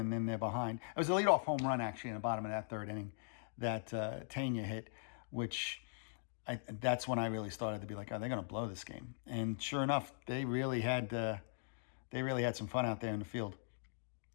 then they're behind. It was a leadoff home run, actually, in the bottom of that third inning that Tanya hit, which that's when I really started to be like, oh, they're going to blow this game. And sure enough, they really had some fun out there in the field.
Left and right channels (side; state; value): right; silent; digital silence